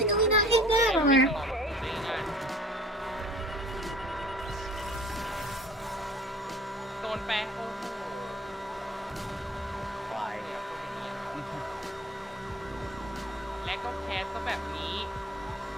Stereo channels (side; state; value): both; normal; correlation 0.49